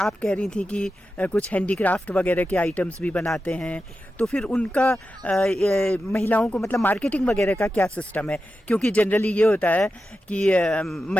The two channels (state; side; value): normal; both; correlation 0.91